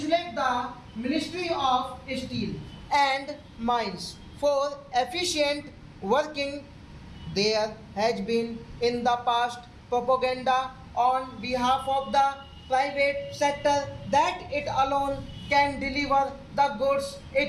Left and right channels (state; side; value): identical; both; correlation 1.00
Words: the Ministry of Steel and Mines for efficient working. There has been in the past propaganda on behalf of the private sector that it alone can deliver the goods,